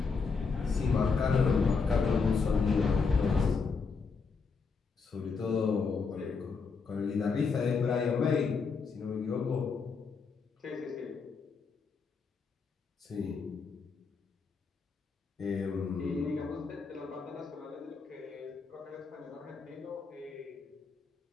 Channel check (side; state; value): right; quieter; 5.0 dB